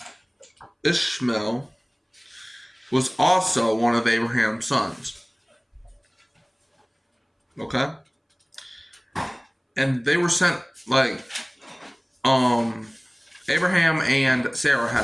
Ishmael was also one of Abraham's sons. Okay? And they were sent, Abraham and Sarah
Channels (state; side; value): identical; both; correlation 1.00